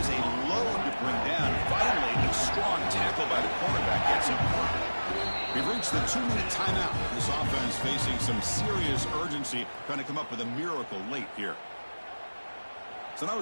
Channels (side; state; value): both; inverted; correlation -1.00